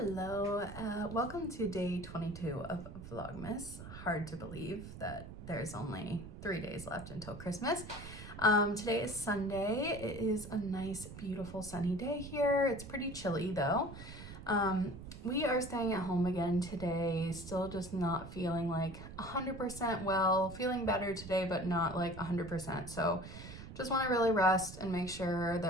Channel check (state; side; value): noise; right; rumble, 12 dB below the sound